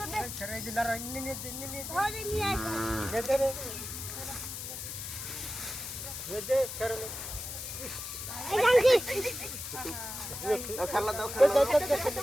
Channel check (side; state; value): left; noise; hiss, 7 dB below the sound